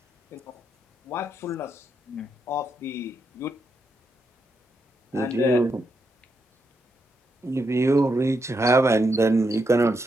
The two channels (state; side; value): normal; both; correlation 0.82